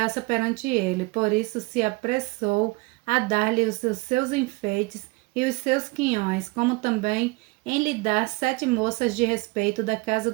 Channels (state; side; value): quieter; left; 24.6 dB